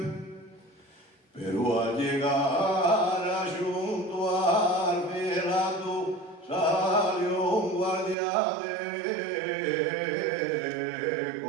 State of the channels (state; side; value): drops out; left; at 8.2 s